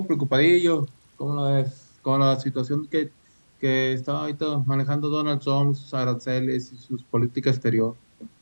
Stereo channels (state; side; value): inverted; both; correlation -1.00